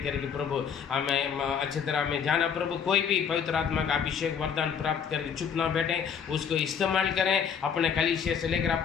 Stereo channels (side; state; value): right; quieter; 7.3 dB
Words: प्रभु हमें अच्छी तरह में जाना। प्रभु कोई भी पवित्र आत्मा का अभिषेक वरदान प्राप्त करके चुप ना बैठे, उसको इस्तेमाल करें। अपने कलीसिया से लेकर,